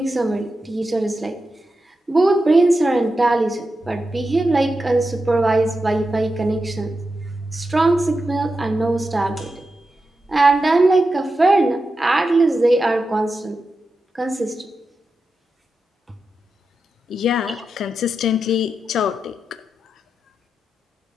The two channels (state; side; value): normal; both; correlation 0.89